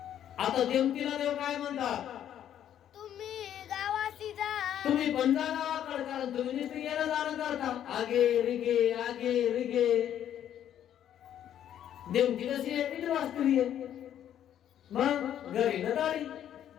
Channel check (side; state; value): right; quieter; 10.5 dB